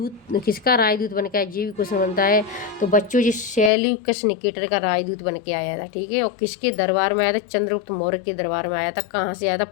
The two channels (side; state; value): right; drops out; at 3.7 s